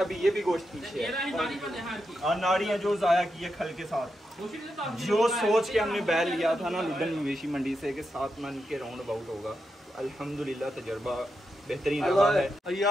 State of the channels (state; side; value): normal; both; correlation 0.86